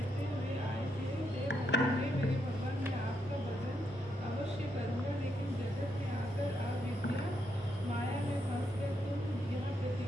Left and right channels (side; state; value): both; normal; correlation 0.79